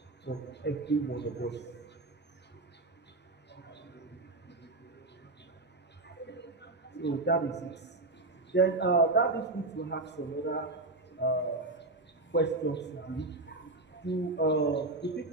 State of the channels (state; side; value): quieter; left; 3.0 dB